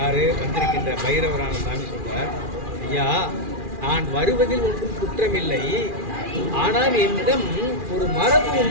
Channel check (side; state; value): left; late; 2.4 ms